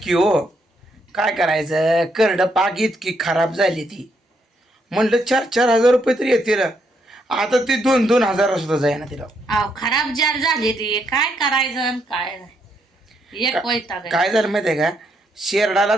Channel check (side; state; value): both; normal; correlation 0.76